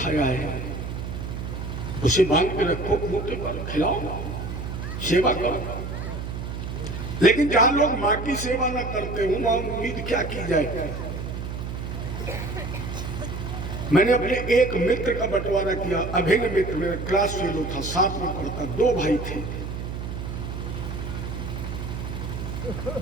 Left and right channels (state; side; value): noise; right; hum, 6 dB below the sound